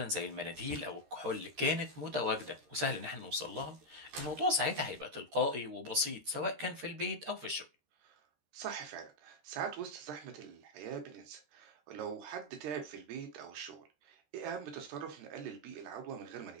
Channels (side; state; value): left; late; 13 ms